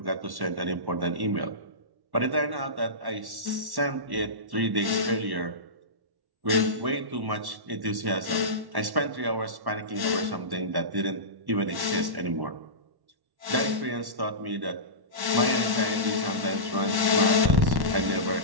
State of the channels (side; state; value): left; late; 1.1 ms